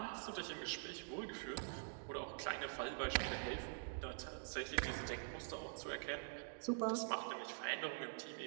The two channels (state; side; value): silent; left; digital silence